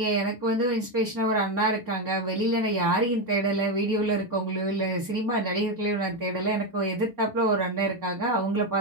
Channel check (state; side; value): normal; both; correlation 0.09